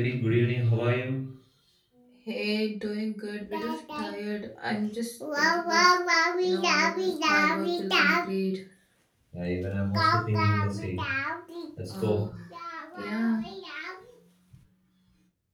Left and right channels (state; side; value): identical; both; correlation 1.00